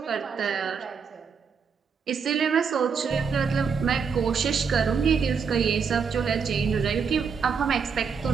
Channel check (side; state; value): left; quieter; 6.0 dB